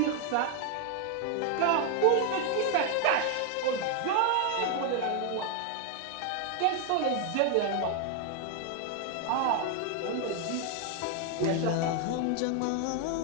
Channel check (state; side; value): different; both; correlation 0.01